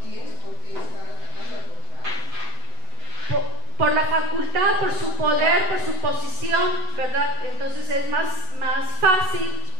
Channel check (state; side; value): late; left; 8.1 ms